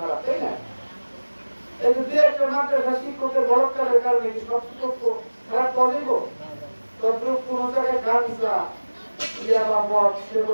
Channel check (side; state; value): both; inverted; correlation -1.00